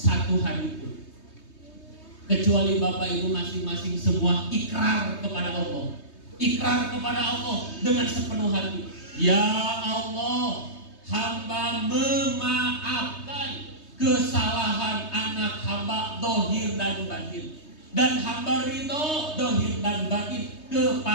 hari pun kecuali Bapak Ibu masing-masing semua ikrar kepada Allah. Ikrar kepada Allah dengan sepenuh hati. Ya Allah, hamba memaafkan kesalahan anak hamba dohir dan batin, dan hamba ridho dohir dan batin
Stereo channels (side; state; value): right; late; 3.2 ms